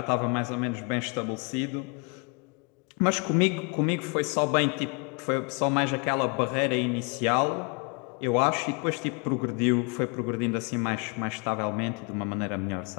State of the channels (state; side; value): quieter; right; 33.4 dB